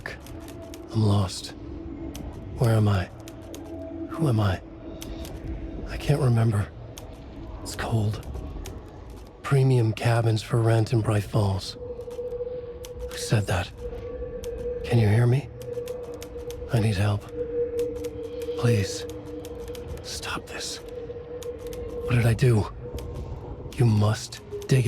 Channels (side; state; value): both; identical; correlation 1.00